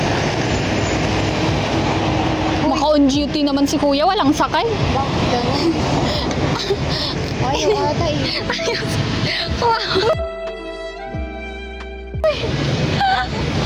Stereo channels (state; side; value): identical; both; correlation 1.00